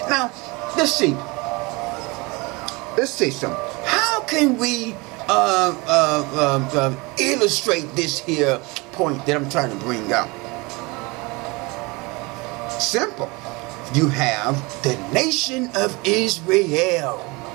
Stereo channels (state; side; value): quieter; left; 25.8 dB